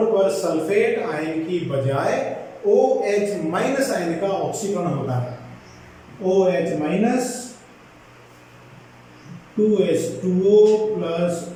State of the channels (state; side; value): identical; both; correlation 1.00